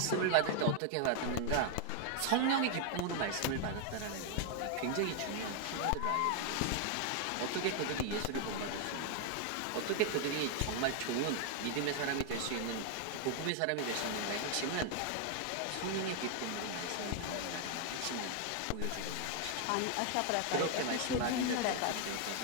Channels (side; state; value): both; different; correlation 0.00